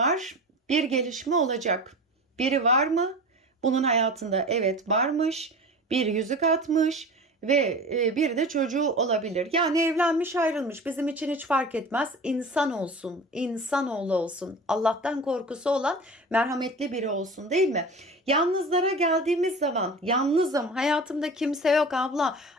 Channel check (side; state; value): both; normal; correlation 0.35